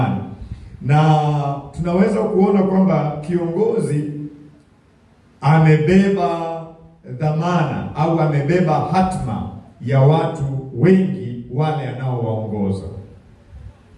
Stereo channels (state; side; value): identical; both; correlation 1.00